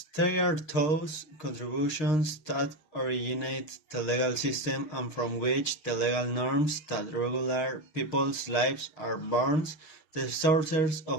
they are those contributions that originate the legal system and from which the legal norms that regulate people's lives are born. The sources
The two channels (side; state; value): right; late; 6.5 ms